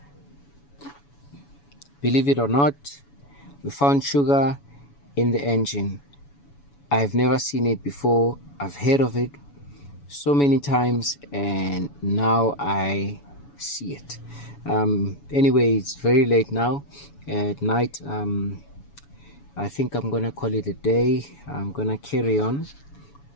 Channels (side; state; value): right; late; 7.1 ms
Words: Believe it or not, we found sugar in the engine. I've never seen it before. I've heard of it so many times, and now I see it. Anyway, it's very late now at night. I think I'm gonna call it a day. I'm gonna carry on.